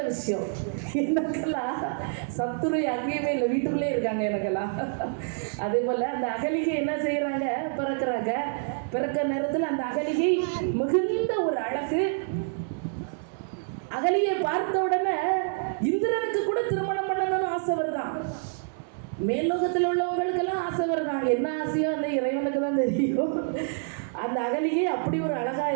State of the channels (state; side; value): silent; left; digital silence